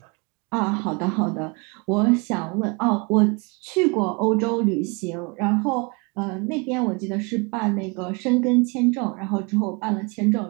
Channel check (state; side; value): quieter; left; 29.8 dB